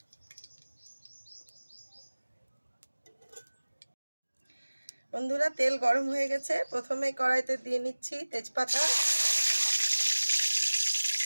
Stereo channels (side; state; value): both; inverted; correlation -1.00